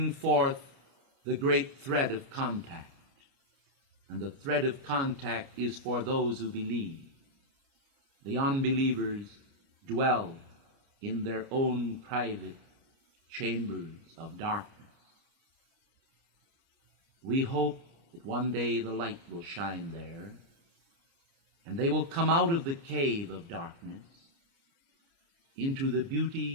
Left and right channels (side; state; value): left; late; 29 ms